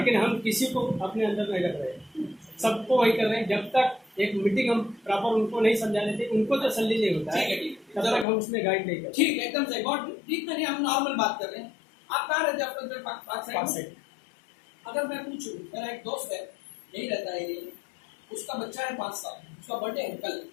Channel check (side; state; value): right; drops out; at 8.2 s